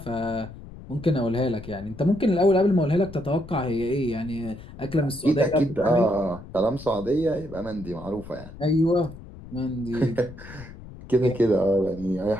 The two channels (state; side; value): noise; left; rumble, 15 dB below the sound